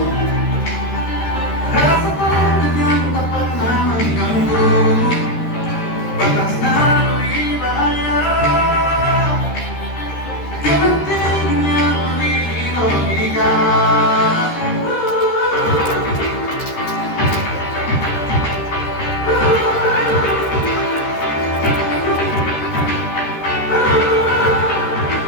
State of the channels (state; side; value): late; right; 13 ms